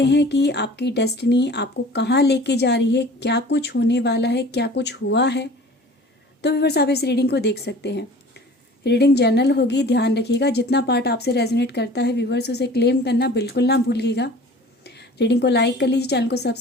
हैं कि आपकी डेस्टिनी आपको कहाँ लेके जा रही है, क्या कुछ होने वाला है, क्या कुछ हुआ है, तो व्यूवर्स आप इस रीडिंग को देख सकते हैं। रीडिंग जनरल होगी, ध्यान रखिएगा। जितना पार्ट आपसे रेजोनेट करता है व्यूवर्स, उसे क्लेम करना बिल्कुल ना भूलिएगा। रीडिंग को लाइक कर लीजिए, चैनल को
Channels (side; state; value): both; normal; correlation 0.44